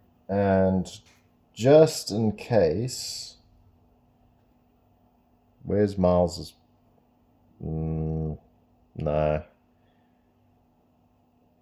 And just in case, where's Miles's? No.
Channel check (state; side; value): identical; both; correlation 1.00